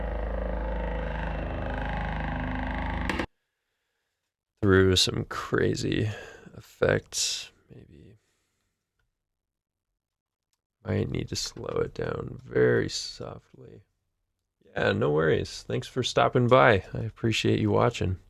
Through some crazy effects, maybe. Might need to slow it down very softly. Yeah, no worries. Thanks for stopping by. I appreciate you watching.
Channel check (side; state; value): both; identical; correlation 1.00